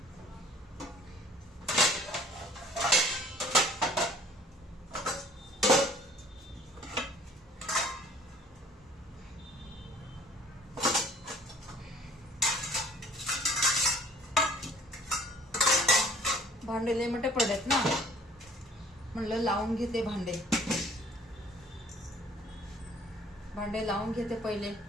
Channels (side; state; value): both; normal; correlation 0.54